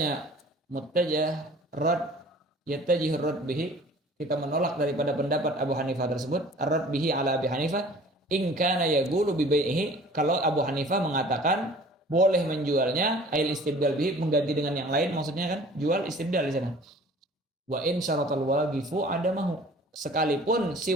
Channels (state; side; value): normal; both; correlation 0.48